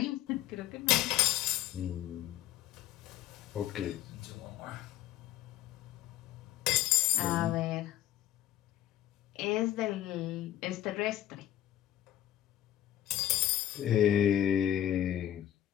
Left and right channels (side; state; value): right; quieter; 12.3 dB